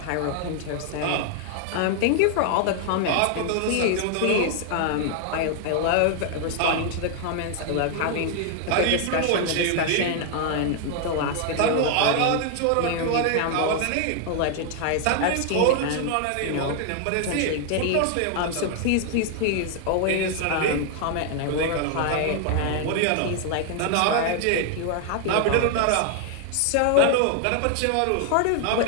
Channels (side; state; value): both; different; correlation 0.00